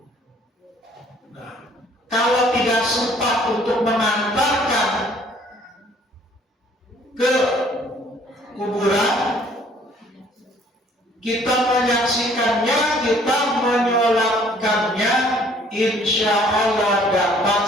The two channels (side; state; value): both; normal; correlation 0.59